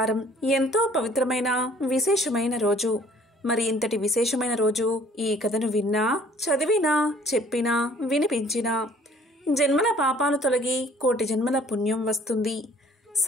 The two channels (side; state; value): both; normal; correlation 0.56